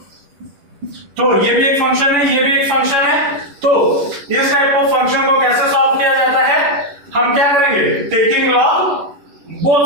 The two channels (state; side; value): late; left; 11 ms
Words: तो ये भी एक फंक्शन है, ये भी एक फंक्शन है। तो इस टाइप ऑफ फंक्शन को कैसे सॉल्व किया जाता है, हम क्या करेंगे, taking log